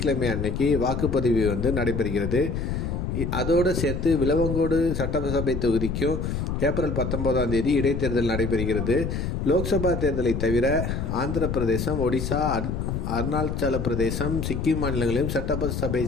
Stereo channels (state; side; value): noise; left; rumble, 2 dB below the sound